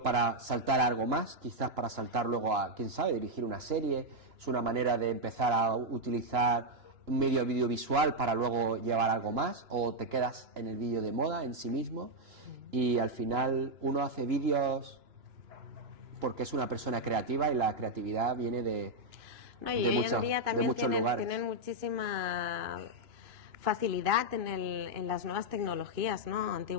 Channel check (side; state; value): left; late; 2.9 ms